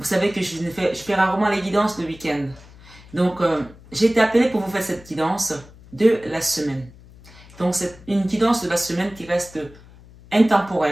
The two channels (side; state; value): left; noise; hum, 22 dB below the sound